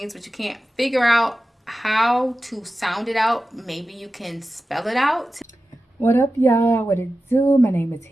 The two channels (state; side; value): normal; both; correlation 0.94